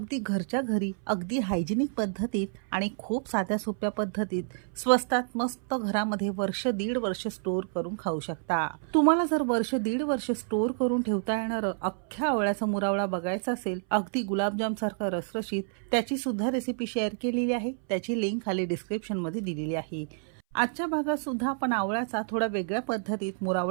घरच्या घरी अगदी हायजिनिक पद्धतीत आणि खूप साध्या सोप्या पद्धतीत स्वस्तात मस्त घरामध्ये वर्ष दीड वर्ष स्टोर करून खाऊ शकता। तुम्हाला जर वर्ष दीड वर्ष स्टोर करून ठेवता येणारं अख्ख्या आवळ्याचा मुरवळा बघायचा असेल अगदी गुलाबजाम सारखा रसरशीत, त्याची सुद्धा रेसिपी शेअर केलेली आहे। त्याची लिंक खाली डिस्क्रिप्शन मध्ये दिलेली आहे। आजच्या भागात सुद्धा आपण आवळ्याचा थोडा वेगळ्या पद्धतीत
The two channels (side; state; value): left; silent; 59 dB below the other